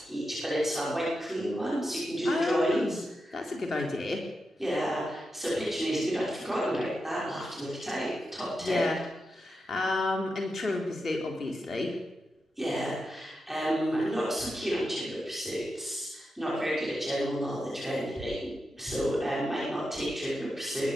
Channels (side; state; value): both; normal; correlation 0.88